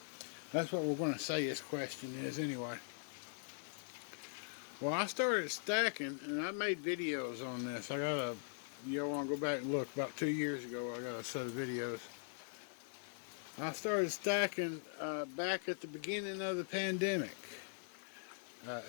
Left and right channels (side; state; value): right; silent; digital silence